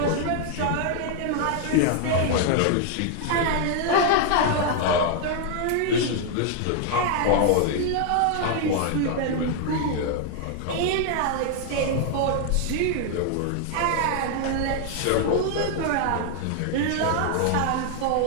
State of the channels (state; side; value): different; both; correlation 0.00